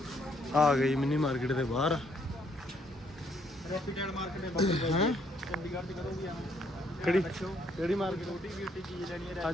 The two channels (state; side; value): normal; both; correlation 0.69